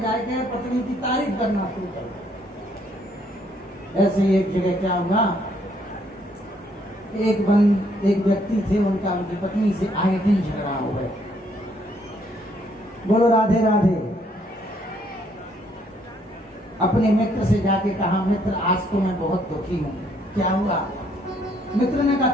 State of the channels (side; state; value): both; normal; correlation 0.68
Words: जाके पत्नी की तारीफ करना शुरू करो। ऐसे ही एक जगह क्या हुआ, एक व्यक्ति थे, उनकी पत्नी से आए दिन झगड़ा हो गए। बोलो राधे राधे। अपने मित्र से जाके कहा, मित्र आज तो मैं बहुत दुखी हूँ। क्या हुआ? मित्र ने कहा,